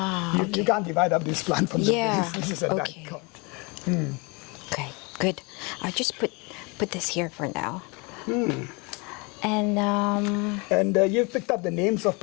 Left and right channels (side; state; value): right; quieter; 29.1 dB